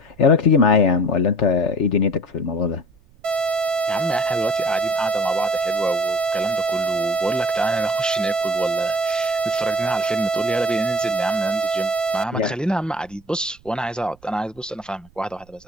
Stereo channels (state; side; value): noise; right; rumble, 28 dB below the sound